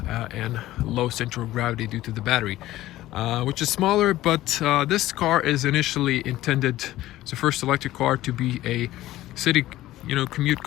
and low central gravity due to the battery, which is smaller. But this car is initially intended as the first electric car to be a city commute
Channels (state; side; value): quieter; right; 15.4 dB